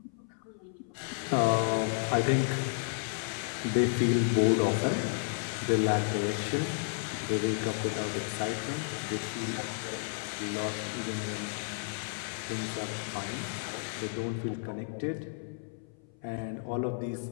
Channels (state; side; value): silent; right; 56 dB below the other